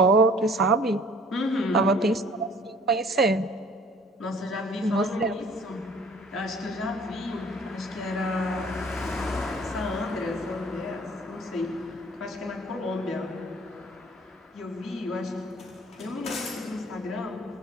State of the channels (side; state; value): both; normal; correlation 0.53